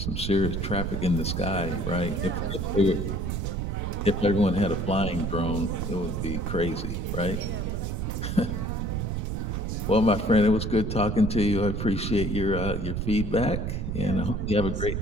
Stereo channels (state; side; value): noise; right; rumble, 2 dB below the sound